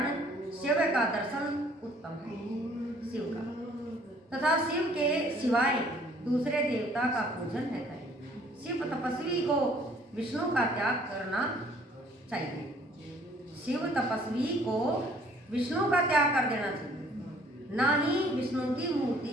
शिव का दर्शन उत्तम है। शिव का तथा शिव के सिवाय दूसरे देवता का पूजन है करें। शिव तपस्वी को विष्णु का त्याग करना चाहिए। शिव तपस्वी को विष्णु का त्याग कर देना चाहिए, ना ही विष्णु की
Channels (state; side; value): normal; both; correlation 0.58